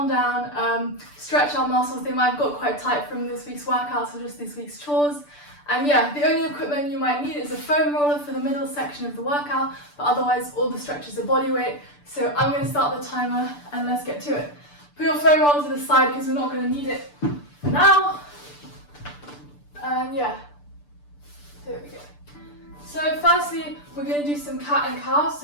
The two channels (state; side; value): late; right; 6.8 ms